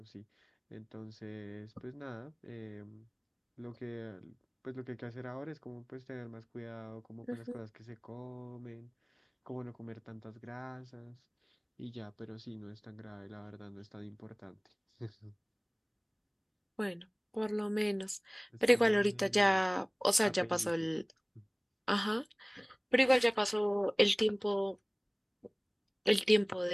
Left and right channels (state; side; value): identical; both; correlation 1.00